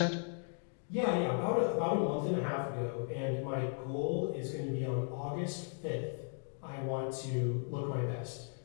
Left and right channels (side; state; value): right; silent; 53 dB below the other